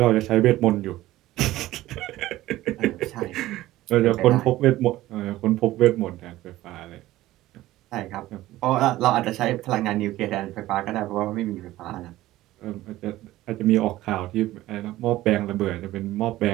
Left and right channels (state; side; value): quieter; left; 16.0 dB